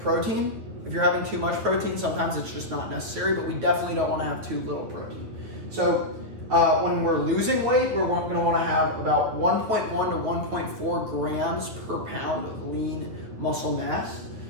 If you're having too much protein, sometimes it's just not necessary, but we definitely don't want to have too little protein. So when we're losing weight, we're going to want to have about 1.1 to 1.4 grams per pound of lean muscle mass.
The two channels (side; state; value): left; late; 9.6 ms